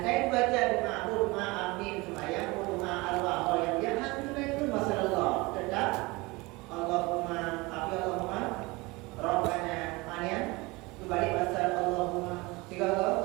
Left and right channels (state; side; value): quieter; left; 23.7 dB